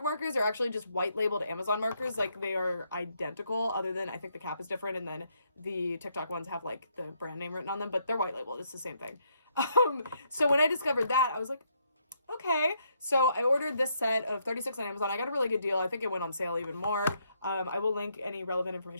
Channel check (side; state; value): both; inverted; correlation -0.74